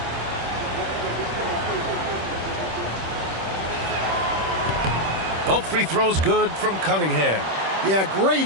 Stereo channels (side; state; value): left; late; 26 ms